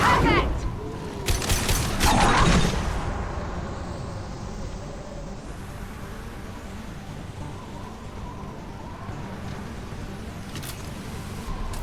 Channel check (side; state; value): both; identical; correlation 1.00